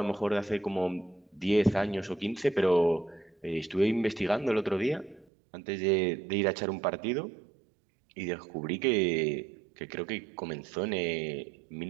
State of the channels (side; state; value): left; drops out; at 5.2 s